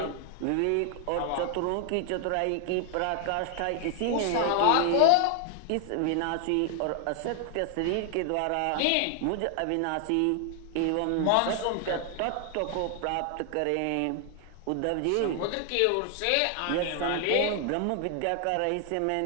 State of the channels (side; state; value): both; different; correlation 0.00